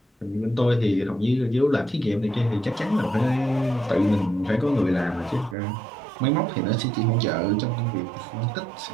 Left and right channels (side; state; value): left; drops out; at 5.6 s